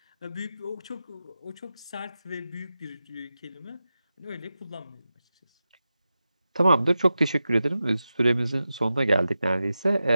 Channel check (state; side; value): inverted; both; correlation -0.92